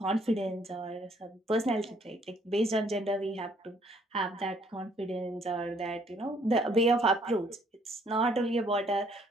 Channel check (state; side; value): normal; both; correlation 0.64